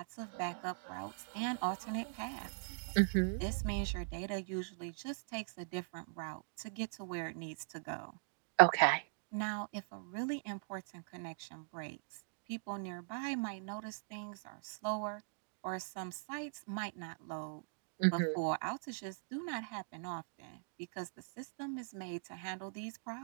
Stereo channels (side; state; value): left; silent; digital silence